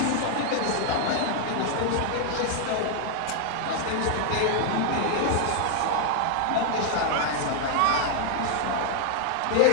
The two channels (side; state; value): both; different; correlation 0.00